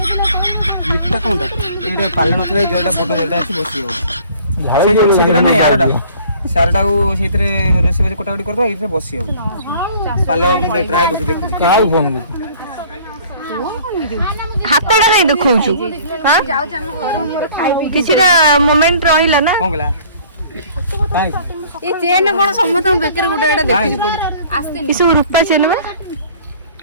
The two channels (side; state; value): both; inverted; correlation -0.52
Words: इटा कोनटा एटा पालन होतले जेटा बड जेटा अछि बसी हो झाड़ जो सेटा ना यारटा सारटा को सेतरे रेसे बजे कोटाकोटी करबो इथे बसी हो पालो मुंडे ट्राई करके देखु काउ फोन कर हातटा नै देखौछु हां किछिरा मोमेंट रहिला ना कोन गला ये चेन कोन समत बेकर गुडा एटा देखि पड़ी आस्ते किछु रुपा चेन में